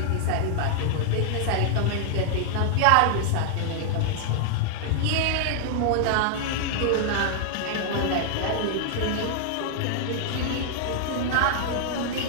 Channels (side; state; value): both; different; correlation -0.01